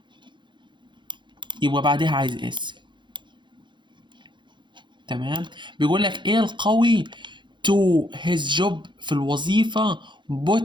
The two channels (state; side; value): late; left; 0.23 ms